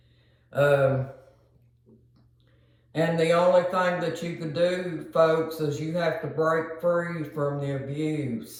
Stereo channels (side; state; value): both; identical; correlation 1.00